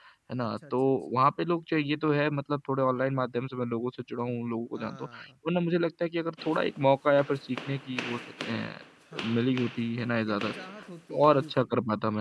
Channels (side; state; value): both; identical; correlation 1.00